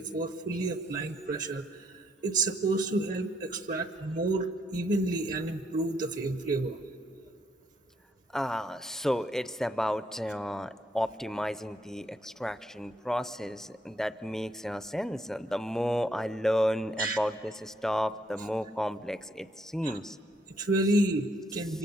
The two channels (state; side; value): normal; both; correlation 0.72